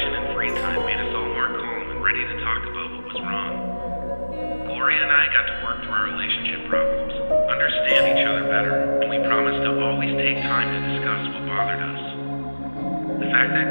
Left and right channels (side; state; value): both; inverted; correlation -1.00